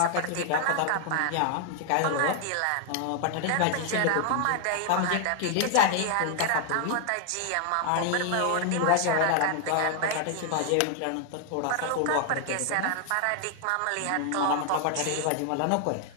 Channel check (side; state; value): both; different; correlation 0.00